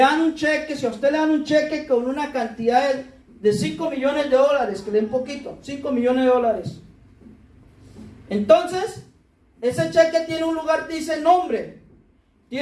un cheque, si a usted le dan un cheque con una cantidad de 5 millones de dólares, que le den poquito, 5 millones de dólares. Entonces, ese cheque tiene un lugar que dice nombre,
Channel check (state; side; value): identical; both; correlation 1.00